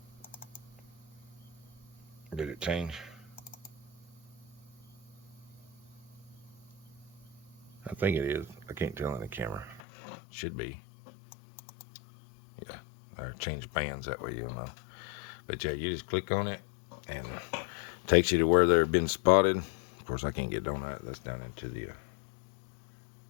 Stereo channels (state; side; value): drops out; right; at 9.8 s